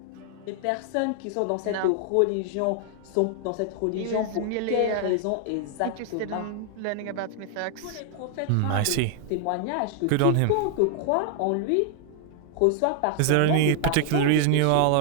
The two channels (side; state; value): both; different; correlation -0.01